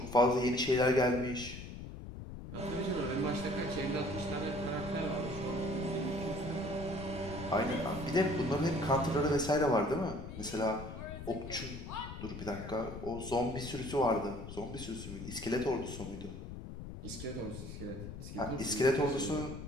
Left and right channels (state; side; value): noise; left; rumble, 10 dB below the sound